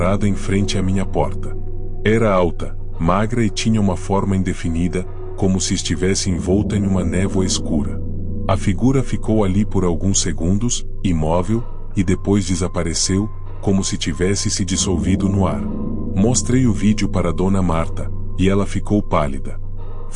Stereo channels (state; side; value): identical; both; correlation 1.00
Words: em frente à minha porta. Era alta, magra e tinha uma forma indefinida, como se estivesse envolta em uma névoa escura. A figura ficou ali por alguns segundos, imóvel, e depois desapareceu, como se tivesse se dissolvido no ar. Mostrei o vídeo para Dona Marta, e ela ficou pálida.